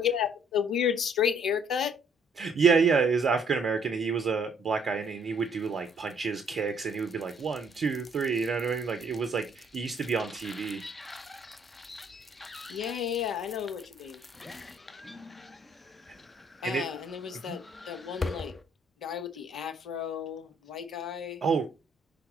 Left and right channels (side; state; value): both; normal; correlation 0.64